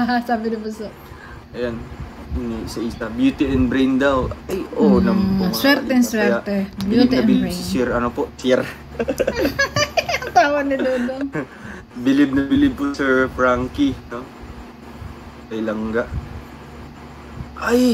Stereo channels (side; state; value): both; identical; correlation 1.00